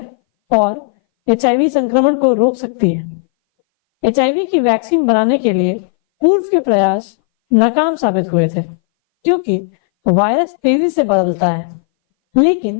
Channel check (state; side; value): silent; right; 61 dB below the other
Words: और एचआईवी संक्रमण को रोक सकती है। एचआईवी की वैक्सीन बनाने के लिए पूर्व के प्रयास नाकाम साबित हुए थे, क्योंकि वायरस तेजी से बदलता है, लेकिन